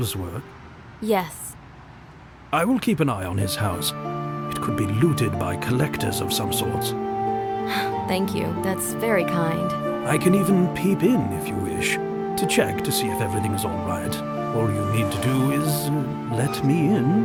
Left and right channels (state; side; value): identical; both; correlation 1.00